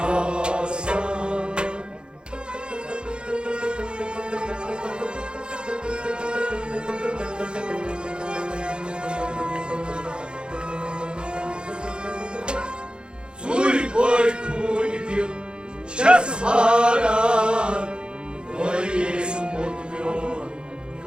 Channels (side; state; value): left; late; 0.051 ms